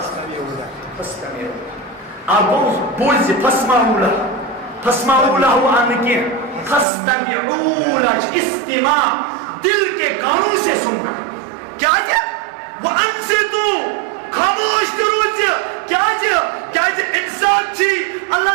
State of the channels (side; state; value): left; drops out; at 6.9 s